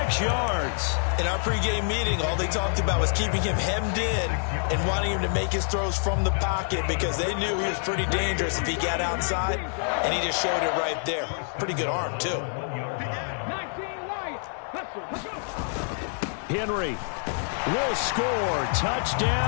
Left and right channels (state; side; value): silent; right; 60 dB below the other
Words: yards. In our pregame meeting, all they talked about was keeping him hemmed in and wanting him to make his throws from the pocket because they knew he was pretty dangerous if he got outside, and he just showed it right there. Pretty good arm, too. Henry will score.